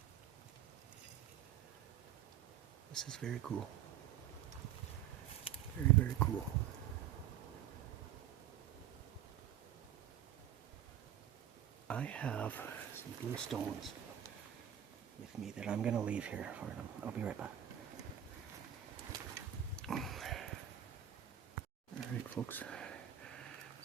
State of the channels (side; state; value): left; quieter; 10.7 dB